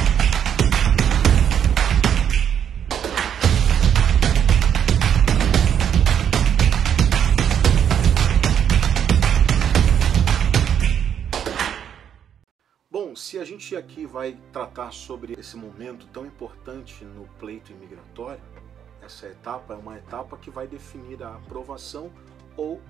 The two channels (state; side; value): quieter; left; 8.9 dB